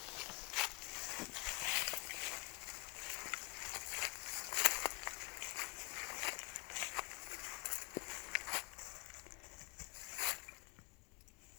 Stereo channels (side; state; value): right; quieter; 31.2 dB